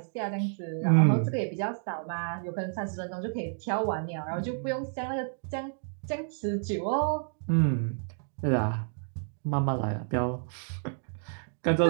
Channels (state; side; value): silent; left; digital silence